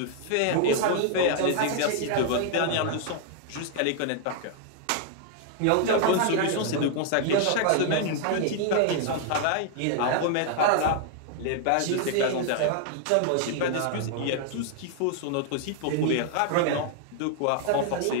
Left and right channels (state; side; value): different; both; correlation 0.00